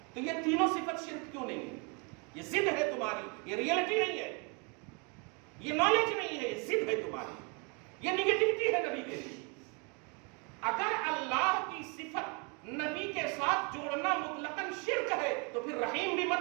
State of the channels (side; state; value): left; quieter; 33.5 dB